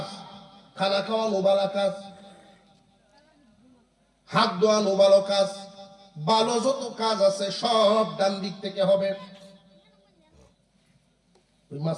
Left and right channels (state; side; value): identical; both; correlation 1.00